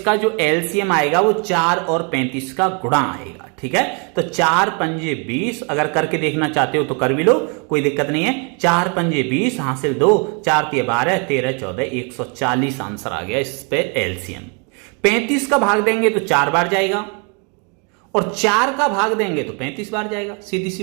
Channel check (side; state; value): left; quieter; 35.6 dB